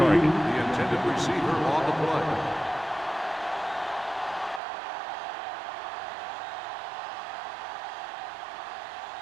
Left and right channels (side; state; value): left; drops out; at 4.6 s